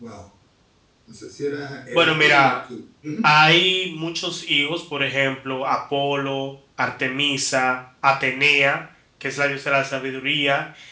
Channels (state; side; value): identical; both; correlation 1.00